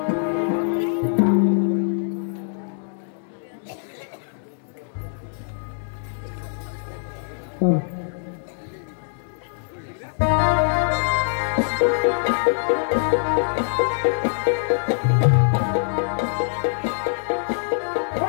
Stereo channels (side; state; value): right; silent; digital silence